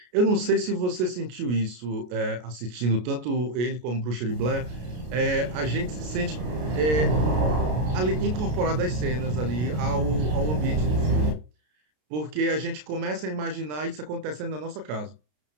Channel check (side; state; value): left; late; 33 ms